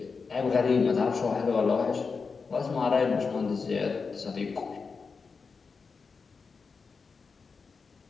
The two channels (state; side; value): quieter; right; 5.0 dB